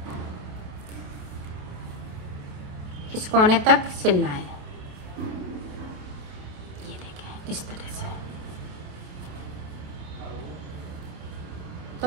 इस कोने तक सिलना है। ये देखें इस तरह से।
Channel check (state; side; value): late; left; 28 ms